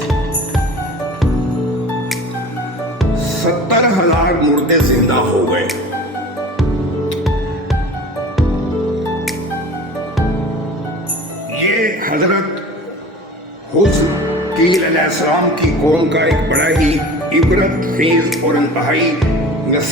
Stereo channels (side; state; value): both; normal; correlation 0.39